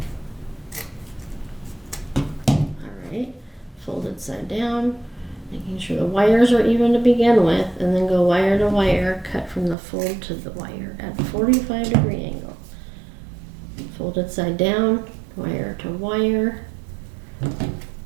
All right, folded side down, making sure the wires are even to begin with, and then go wire to wire, cut from the fold to the wire at a 45-degree angle. Folded side down, wire to wire,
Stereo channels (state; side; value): drops out; left; at 9.8 s